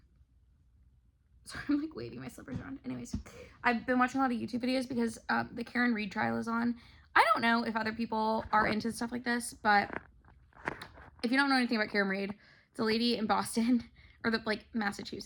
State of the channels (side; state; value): both; identical; correlation 1.00